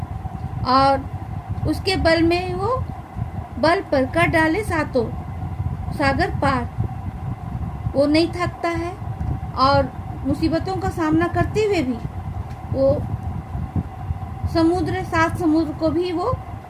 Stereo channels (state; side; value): identical; both; correlation 1.00